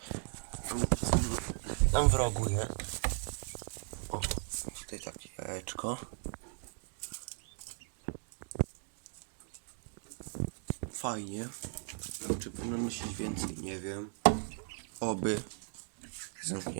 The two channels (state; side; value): silent; left; 53 dB below the other